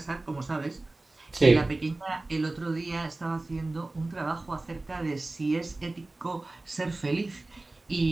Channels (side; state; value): left; quieter; 3.0 dB